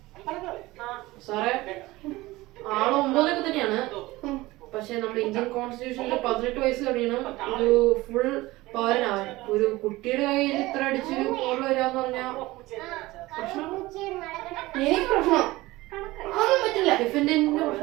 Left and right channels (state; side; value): quieter; left; 19.4 dB